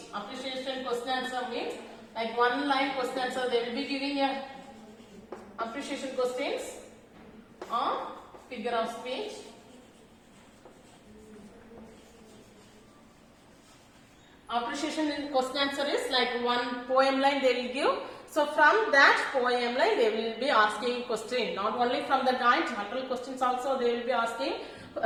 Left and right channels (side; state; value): both; identical; correlation 1.00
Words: Appreciation question answer means like 1-line question answer, they will be giving a appreciation questions or figure of speech. Appreciation question answer is like 1 poem line they will give. So from that poem line they will be asking question. Not only from the guide, general questions also they will be asking.